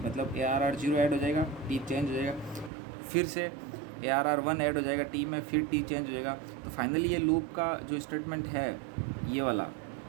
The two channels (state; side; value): drops out; left; at 2.7 s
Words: मतलब ARR 0 ऐड हो जाएगा, टी चेंज हो जाएगा, फिर से ARR 1 ऐड हो जाएगा टी में, फिर टी चेंज हो जाएगा। तो फाइनली ये लूप का जो स्टेटमेंट है ये वाला